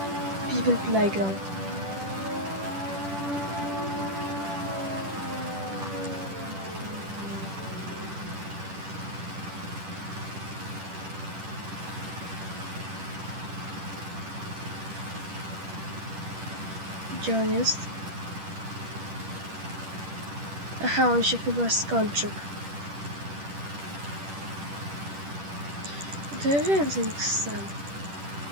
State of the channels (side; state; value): left; late; 10 ms